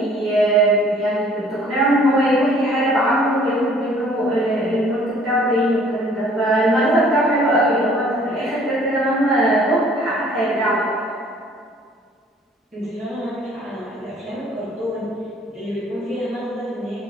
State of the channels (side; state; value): both; normal; correlation 0.56